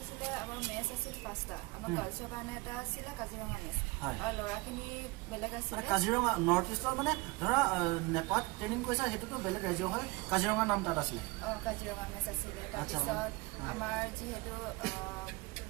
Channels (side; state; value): left; quieter; 24.3 dB